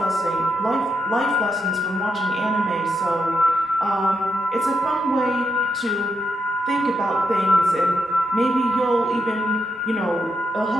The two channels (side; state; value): both; normal; correlation 0.82